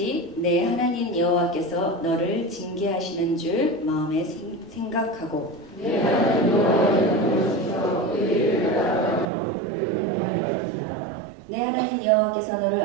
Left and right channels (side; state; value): left; drops out; at 9.2 s